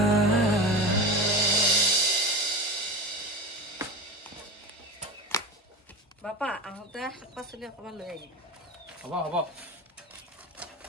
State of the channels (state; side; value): normal; both; correlation 0.26